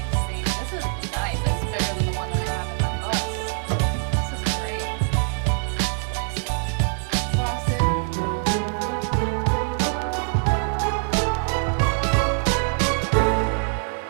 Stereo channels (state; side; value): silent; left; digital silence